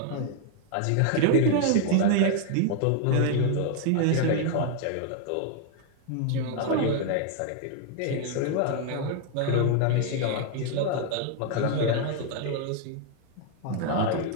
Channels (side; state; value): both; different; correlation 0.00